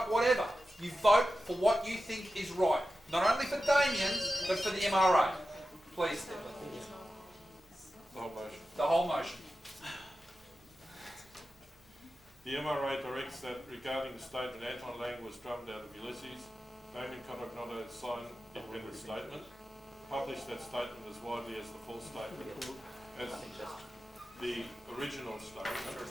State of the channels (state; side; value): normal; both; correlation 0.93